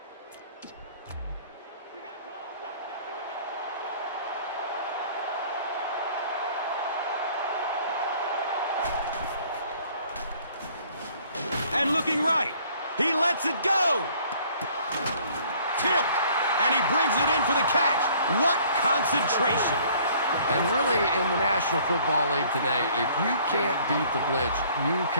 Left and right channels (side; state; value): both; inverted; correlation -0.57